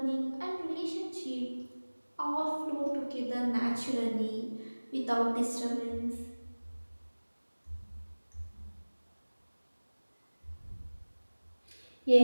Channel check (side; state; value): both; inverted; correlation -1.00